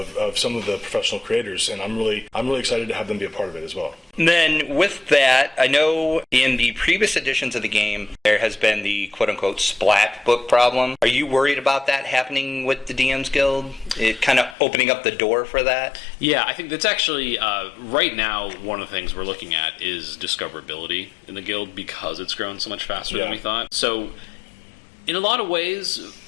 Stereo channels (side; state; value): right; drops out; at 14.6 s